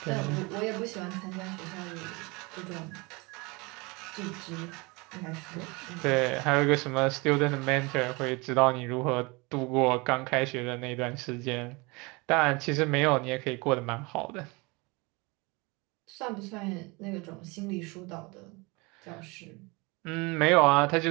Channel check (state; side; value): quieter; left; 26.6 dB